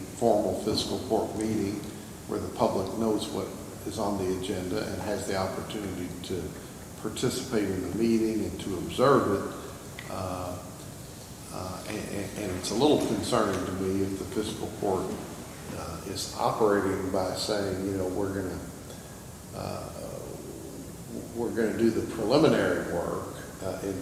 formal fiscal court meeting where the public knows what is on the agenda and has the opportunity to participate in the meeting and to observe it. And it's a little concerning to me if the fiscal court is operating by saying, we're going to do the preliminary work in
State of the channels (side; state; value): both; identical; correlation 1.00